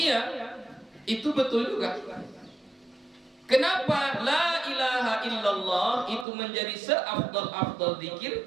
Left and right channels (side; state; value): left; drops out; at 6.2 s